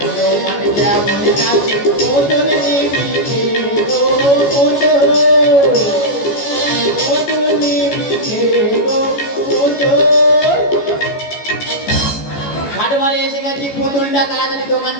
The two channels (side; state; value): right; late; 14 ms